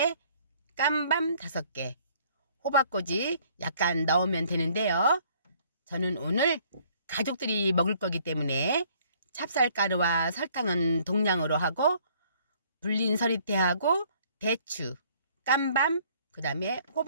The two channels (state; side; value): inverted; both; correlation -0.60